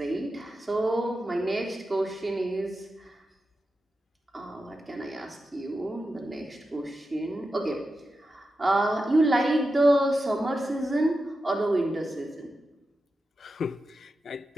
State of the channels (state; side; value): normal; both; correlation 0.90